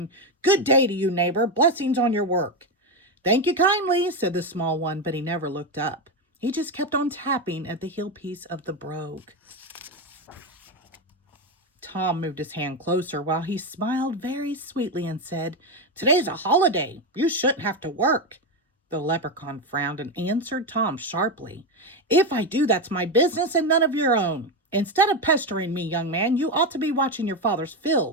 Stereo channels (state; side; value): normal; both; correlation 0.11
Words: "Good day to you, neighbor. Blessings on your work." "Thank you kindly," said the small one, but he never looked up. He just kept on tapping at the heel piece of the brogue. Tom moved his hand closer while he smiled very sweetly and said, "Today's a holiday. You shouldn't have to work." The leprechaun frowned and answered Tom sharply, "If I do, that's my business and none of your own. Instead of pestering me, young man, you ought to be watching your father's